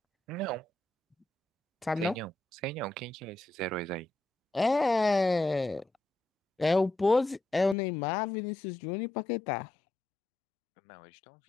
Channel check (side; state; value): right; drops out; at 7.8 s